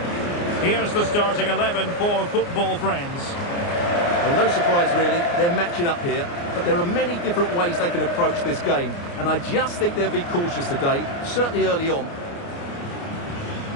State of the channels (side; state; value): right; late; 29 ms